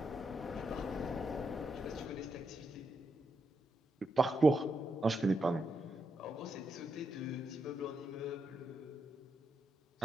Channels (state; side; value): normal; both; correlation 0.83